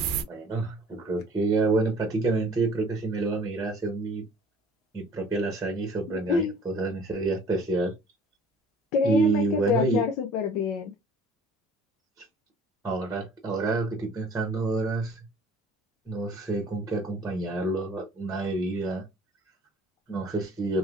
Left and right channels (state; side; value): normal; both; correlation 0.51